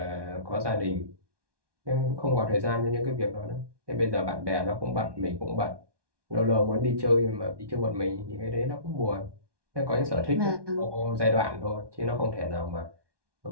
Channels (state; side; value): late; left; 1.2 ms